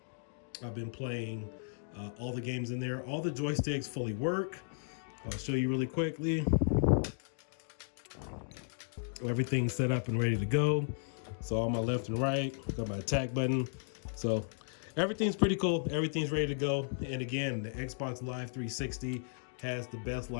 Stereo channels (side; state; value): right; silent; digital silence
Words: I've been playing all the games in there. All the joysticks fully work. I'll show you really quickly. Everything's set up and ready to go. So on my left and right, got my attack button. So everything's pretty cool. Everything's ready to go. And again, the Xbox Live 360 has the best